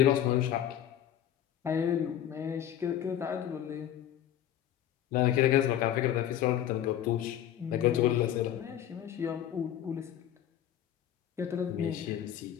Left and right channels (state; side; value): quieter; right; 10.9 dB